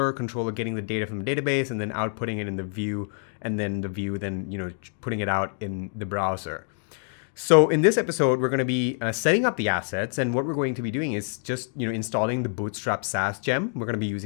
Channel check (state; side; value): silent; right; 61 dB below the other